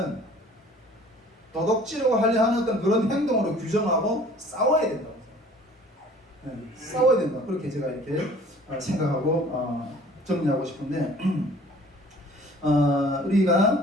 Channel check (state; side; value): normal; both; correlation 0.51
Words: 어떤 그런 행동으로 규정하고 싸워야 된다고. 싸워야 된다. 그렇게 제가 이렇게 생각하고 정리하고 싶은데